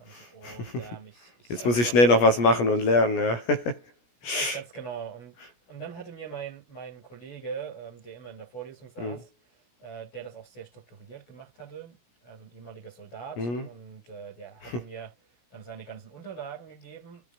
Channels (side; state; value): right; late; 17 ms